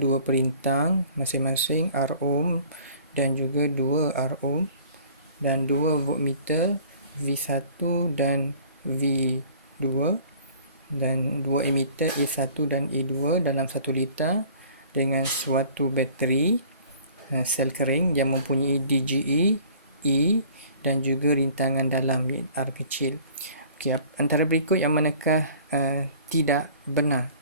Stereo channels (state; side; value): inverted; both; correlation -0.51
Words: dua perintang masing-masing R ohm dan juga 2 R ohm dan 2 voltmeter V1 dan V2 dan 2 emitter A1 dan A2 dalam 1 liter dengan suatu bateri sel kering yang mempunyai DGE, E dan juga rintangan dalam R kecil. Okey, antara berikut yang manakah tidak benar?